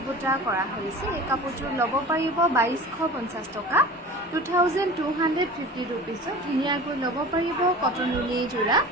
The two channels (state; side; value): normal; both; correlation 0.38